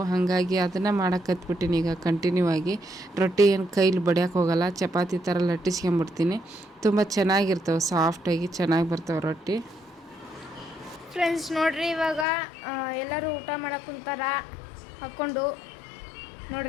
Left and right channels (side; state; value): right; drops out; at 12.2 s